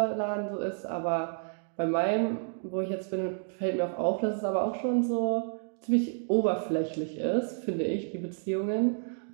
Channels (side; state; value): left; silent; digital silence